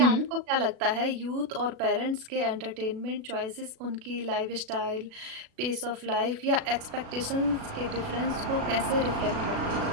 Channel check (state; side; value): late; left; 36 ms